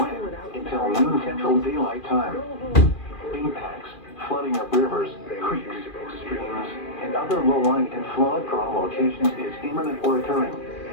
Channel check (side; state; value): right; late; 2.4 ms